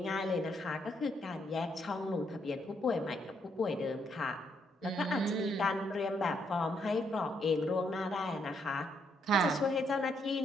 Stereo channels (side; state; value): both; normal; correlation 0.75